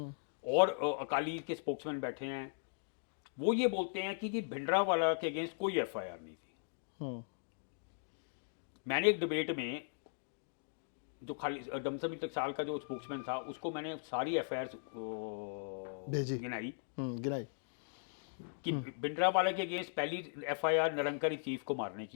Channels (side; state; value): right; silent; digital silence